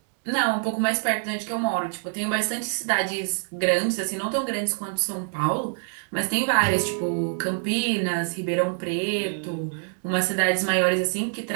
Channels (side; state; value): left; silent; 61 dB below the other